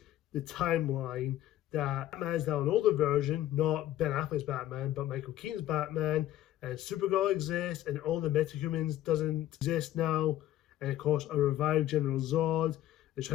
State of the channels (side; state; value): right; quieter; 13.3 dB